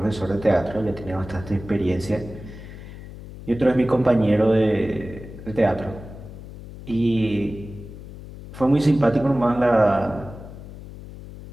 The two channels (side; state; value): left; noise; hum, 14 dB below the sound